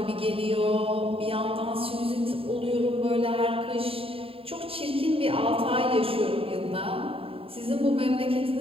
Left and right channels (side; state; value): left; late; 0.27 ms